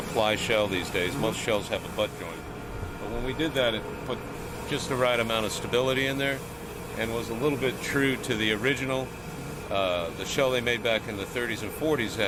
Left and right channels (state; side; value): identical; both; correlation 1.00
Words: ply shell these days. Most shells have a butt joint. But when we did that, it put just the right amount of stability in there and was a little bit true to the original. The shell they made back in the 30s and 40s